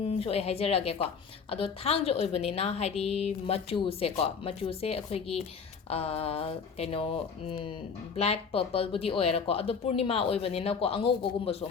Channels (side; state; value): right; quieter; 5.8 dB